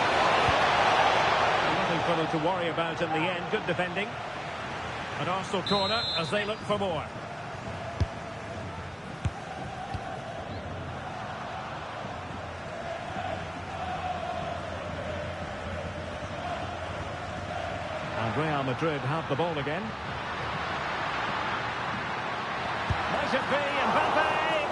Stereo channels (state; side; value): identical; both; correlation 1.00